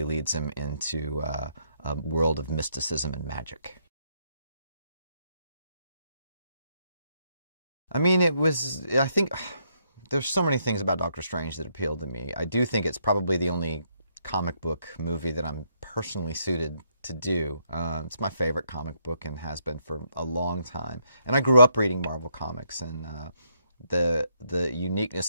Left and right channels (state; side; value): inverted; both; correlation -0.74